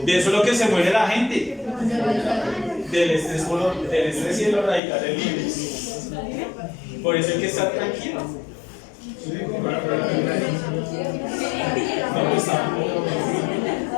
De eso es lo que se muere la gente. Del estrés y de los radicales libres. Por eso hay que estar tranquilo. No, pues tampoco.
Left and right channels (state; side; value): drops out; right; at 4.8 s